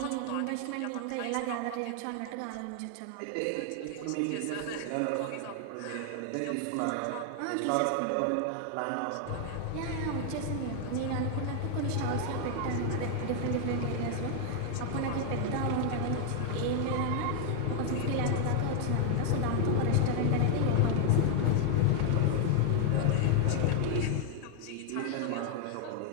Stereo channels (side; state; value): both; different; correlation 0.00